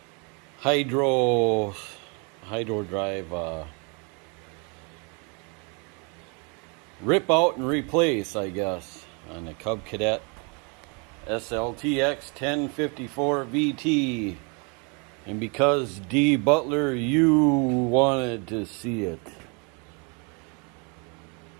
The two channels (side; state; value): left; quieter; 34.0 dB